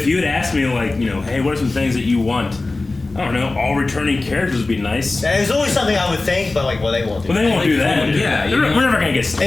you had asked me, like, you know, hey, what are some things that you want? I don't know, all returning characters would be nice. There's always something I would think, but like, well, they won't do But that. they won't do that. Yeah, We're never gonna get If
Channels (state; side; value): quieter; right; 3.3 dB